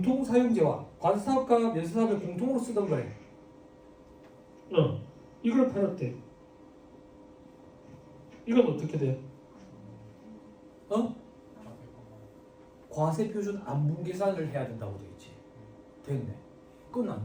과세사업과 면세사업을 공통으로 쓰던 거래. 이걸 팔았대. 이건 어떻게 돼? 과세표준 안분계산을 해야 된다고 되어있지. 됐네.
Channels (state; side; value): identical; both; correlation 1.00